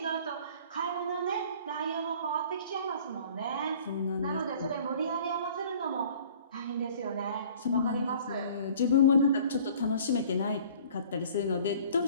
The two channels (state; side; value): inverted; both; correlation -0.50